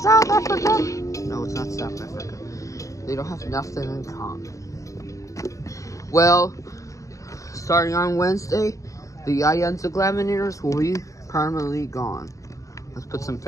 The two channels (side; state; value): right; late; 0.16 ms